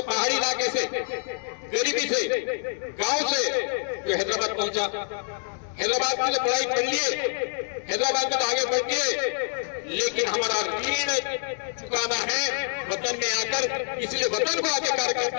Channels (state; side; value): silent; right; 60 dB below the other